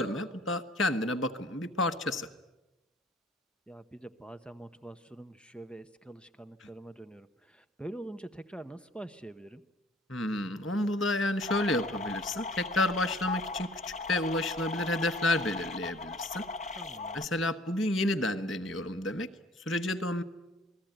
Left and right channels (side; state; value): both; normal; correlation 0.54